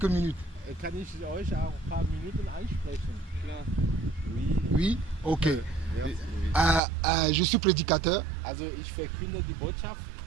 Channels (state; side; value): drops out; left; at 6.8 s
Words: minutes? Kann ich euch auch ein paar Minuten ansprechen? Klar. Oui. Oui? Ok. Ja. Je suis prédicateur Also ich verkünde die Botschaft.